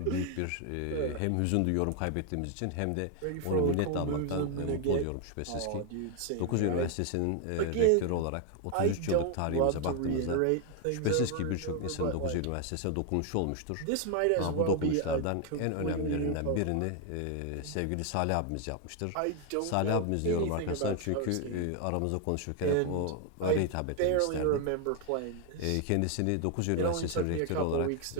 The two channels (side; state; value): both; different; correlation 0.01